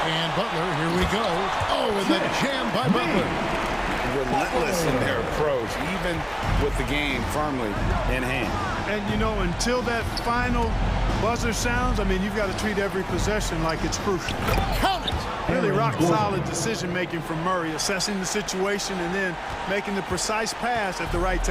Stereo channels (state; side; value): identical; both; correlation 1.00